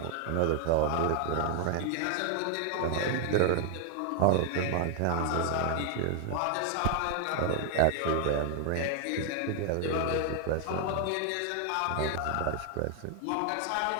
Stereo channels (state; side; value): different; both; correlation 0.00